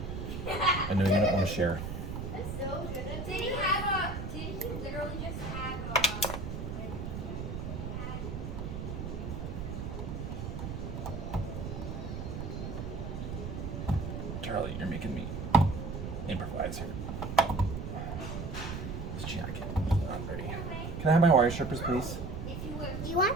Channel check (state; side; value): noise; right; rumble, 5 dB below the sound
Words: I know you don't want to share. That's so good. Did he literally just have Charlie, you're making me improvise here. This jacket is not ready. Can I have my wire strippers, please? if you would? You want?